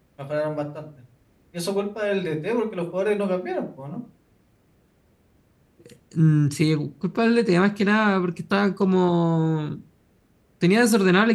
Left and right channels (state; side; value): identical; both; correlation 1.00